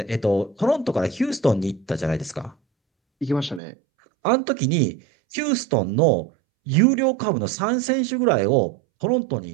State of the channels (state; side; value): drops out; left; at 3.6 s